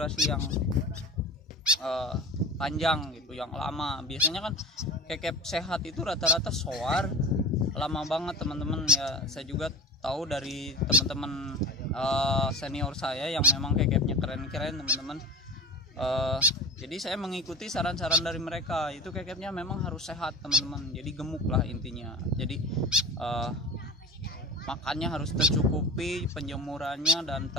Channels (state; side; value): normal; both; correlation 0.37